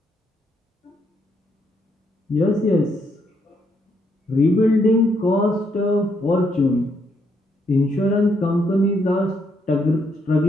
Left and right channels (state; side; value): normal; both; correlation 0.75